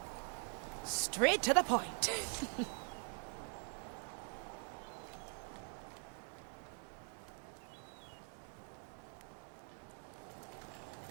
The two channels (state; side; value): quieter; left; 39.6 dB